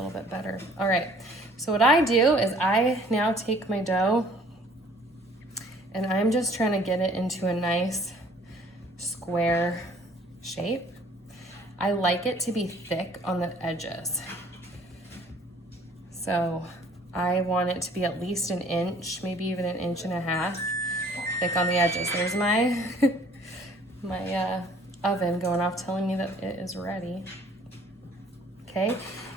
bit better. All right, so what I do is I now take my dough and I'm just trying to get it into a nice square shape. I like it to be thick on the edges. So I want it to be at least 1 inch, maybe even 1.5 inches thick on the edges. There's my, my oven going off telling me that it is ready. Okay,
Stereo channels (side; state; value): both; normal; correlation 0.56